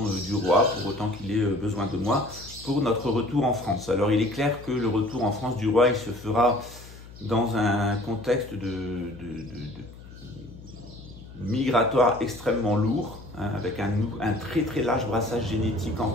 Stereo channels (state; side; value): noise; left; hum, 17 dB below the sound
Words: du roi, pour autant qu'il ait besoin de moi, pour notre retour en France. Alors il est clair que le retour en France du roi, il se fera dans un contexte de migratoire extrêmement lourd, hein, avec un très très large brassage génétique en